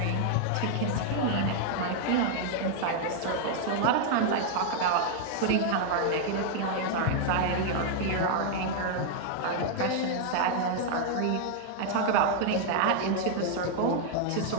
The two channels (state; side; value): different; both; correlation 0.00